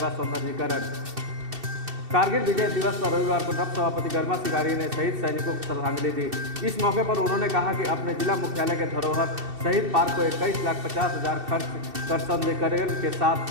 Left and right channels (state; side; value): late; left; 2.7 ms